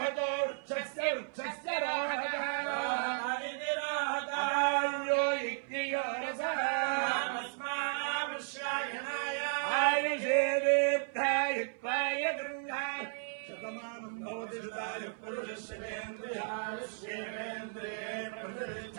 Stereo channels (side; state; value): left; silent; 55 dB below the other